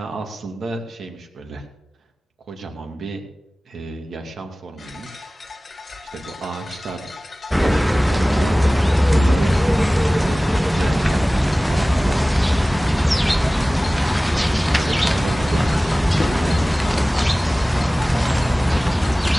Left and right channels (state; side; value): normal; both; correlation 0.98